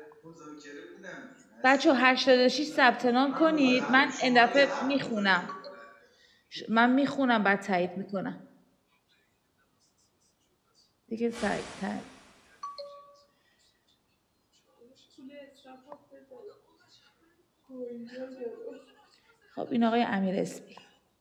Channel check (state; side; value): identical; both; correlation 1.00